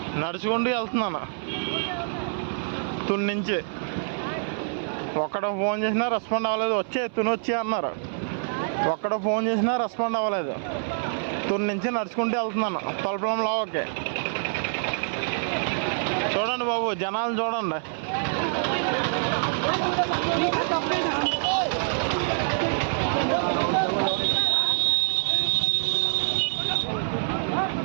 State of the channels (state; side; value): silent; left; 61 dB below the other